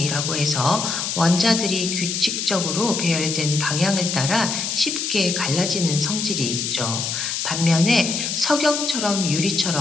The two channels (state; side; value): noise; left; hiss, 2 dB below the sound